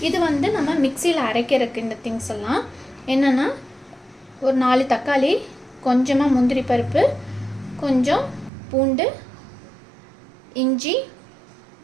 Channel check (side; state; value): left; drops out; at 8.5 s